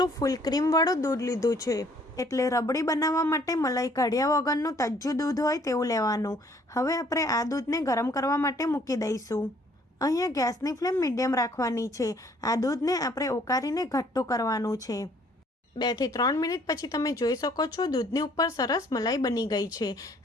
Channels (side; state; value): both; normal; correlation 0.61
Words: ફૂલ ક્રીમવાળું દૂધ લીધું છે। એટલે રબડી બનાવવા માટે મલાઈ કાઢ્યા વગરનું તાજું દૂધ હોય તેવું લેવાનું। હવે આપણે આ દૂધને ગરમ કરવા માટે મૂકી દઈશું। અહીંયા ગેસની ફ્લેમ મીડિયમ રાખવાની છે। આ દૂધને આપણે ઉકાળીને ઘટ્ટું કરવાનું છે। 2 થી 3 મિનિટ પછી તમે જોઈ શકો છો દૂધની ઉપર સરસ મલાઈ બની ગઈ છે।